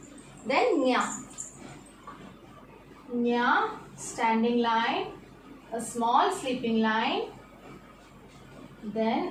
Then nya. Nya, standing line. A small sleeping line.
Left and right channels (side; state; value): both; identical; correlation 1.00